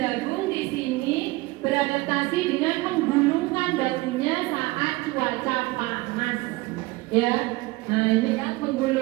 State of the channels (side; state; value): left; quieter; 21.5 dB